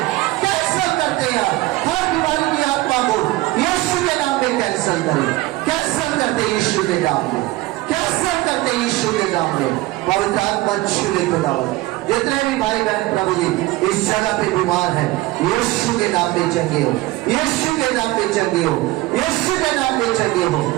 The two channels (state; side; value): quieter; left; 18.8 dB